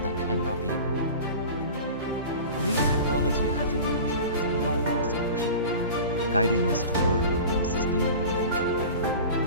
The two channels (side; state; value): both; inverted; correlation -0.36